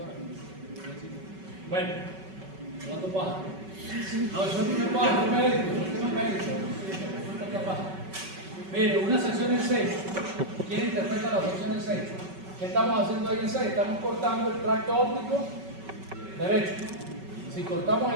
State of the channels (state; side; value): late; left; 5.3 ms